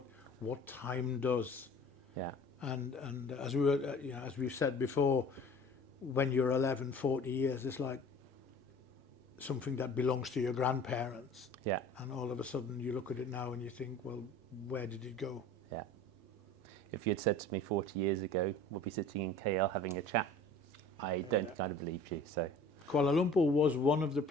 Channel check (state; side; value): normal; both; correlation 0.45